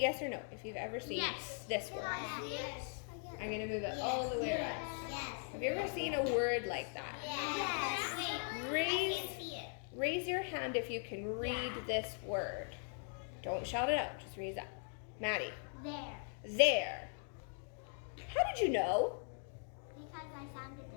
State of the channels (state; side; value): silent; right; 51 dB below the other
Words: yes or no. If you've ever seen this word. Yes. I'm going to move it all the way around. Yes. Have you ever seen a word like that? Yes. Raise your hand if you can read this word. Don't shout it out, just raise up. Maddie. There. How did you know? Because I sounded